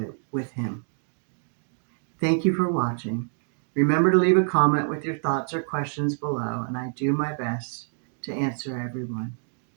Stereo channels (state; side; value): silent; left; 60 dB below the other